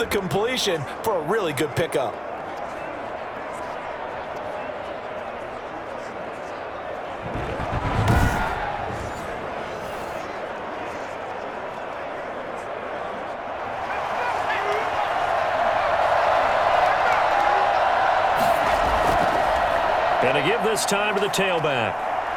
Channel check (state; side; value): identical; both; correlation 1.00